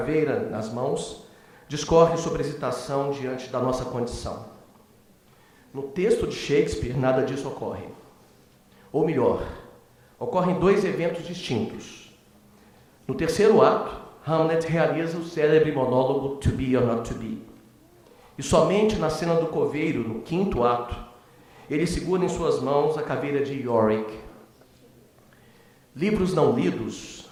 nas mãos, discorre sobre a hesitação diante da nossa condição. No texto de Shakespeare, nada disso ocorre. Ou melhor, ocorrem dois eventos distintos. No terceiro ato, Hamlet realiza o célebre monólogo To Be or Not To Be. E somente na cena do coveiro, no quinto ato, ele segura em suas mãos a caveira de Yorick. Livros não lidos,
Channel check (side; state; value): both; identical; correlation 1.00